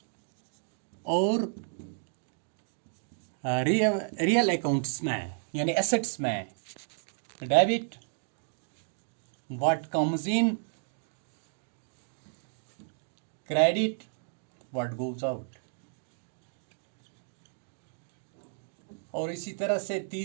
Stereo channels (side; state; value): left; silent; digital silence